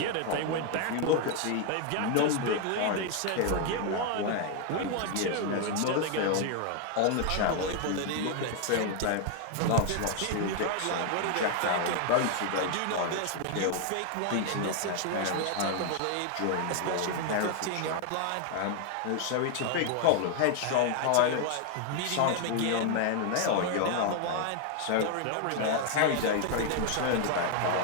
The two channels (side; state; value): both; different; correlation 0.00